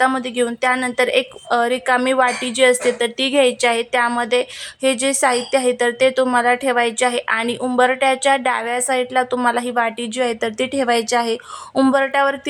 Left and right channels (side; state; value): both; identical; correlation 1.00